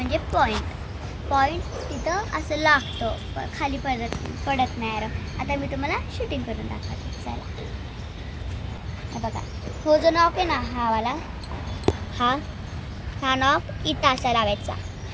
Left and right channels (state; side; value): identical; both; correlation 1.00